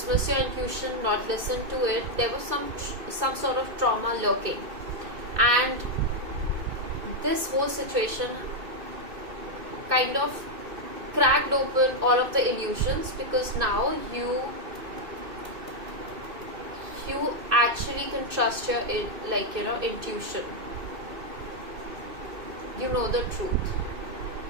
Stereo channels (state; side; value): late; left; 2.5 ms